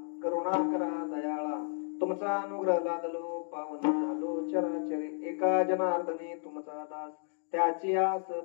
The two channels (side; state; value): right; silent; digital silence